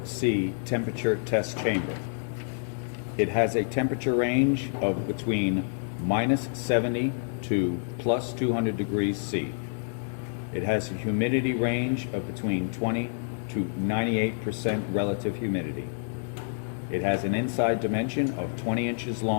temperature test chamber. It has a temperature range of between -70 to +200 degrees C. It has a humidity range of between 20 to 98% relative humidity. It has an inside dimension of 20 inches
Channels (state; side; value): silent; right; digital silence